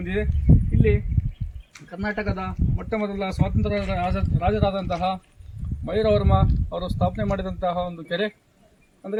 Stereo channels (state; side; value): identical; both; correlation 1.00